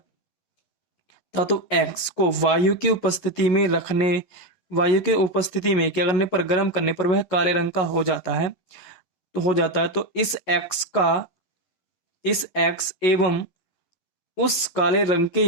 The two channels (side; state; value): right; late; 11 ms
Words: धातु एक्स को वायु की उपस्थिति में क्या करने पर, गर्म करने पर वह काले रंग का हो जाता है। तो इस एक्स एवं उस काले रंग के